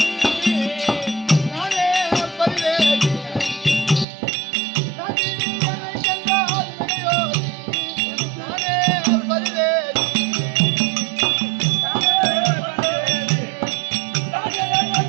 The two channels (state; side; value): drops out; left; at 4.0 s